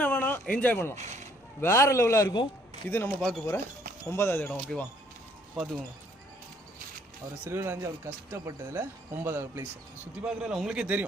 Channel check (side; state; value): both; normal; correlation 0.63